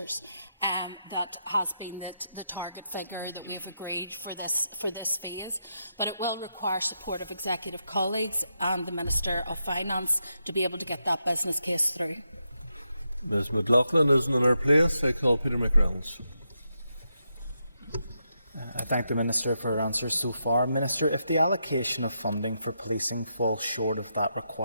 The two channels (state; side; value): inverted; both; correlation -0.84